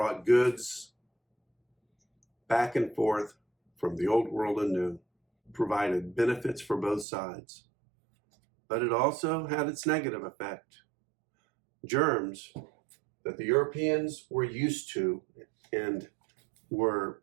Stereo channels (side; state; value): left; drops out; at 7.1 s